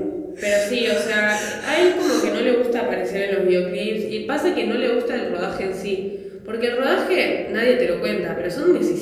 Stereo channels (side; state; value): both; identical; correlation 1.00